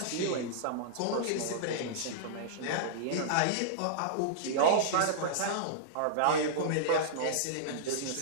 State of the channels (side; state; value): both; different; correlation -0.02